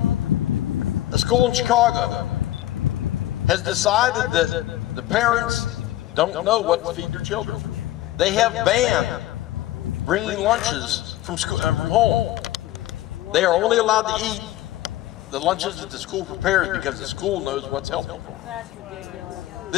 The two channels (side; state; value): right; quieter; 14.6 dB